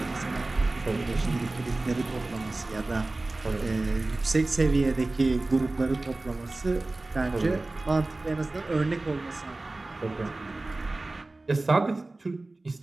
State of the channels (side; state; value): left; quieter; 3.0 dB